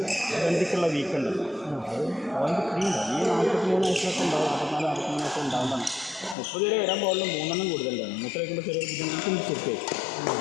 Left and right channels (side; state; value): right; drops out; at 6.4 s